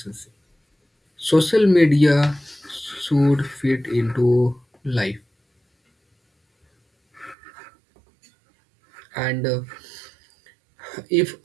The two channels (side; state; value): left; drops out; at 7.4 s